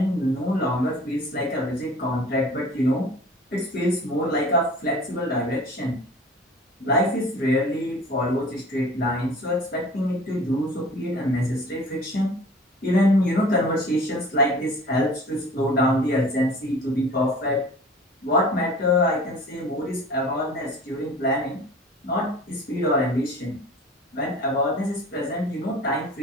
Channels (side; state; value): both; normal; correlation 0.44